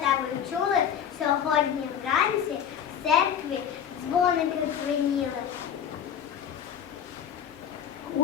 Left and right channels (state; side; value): quieter; right; 8.7 dB